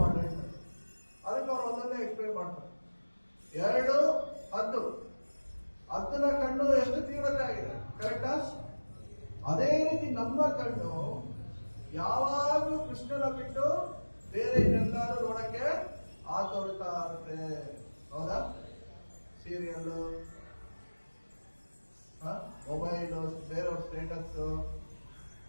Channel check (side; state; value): both; inverted; correlation -1.00